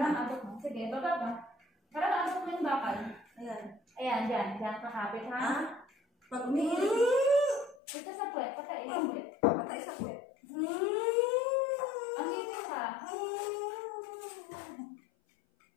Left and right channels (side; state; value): right; drops out; at 7.8 s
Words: ang abot mo. Sige, baba ka. Para maabot mo yung bakal. Ayan. Ayan, dyan. Dyan kakapit, ha? Ha? Pag umiilit, Ito sa puwet. Patain sa puwet. patay sa puwet. Ang dito ka.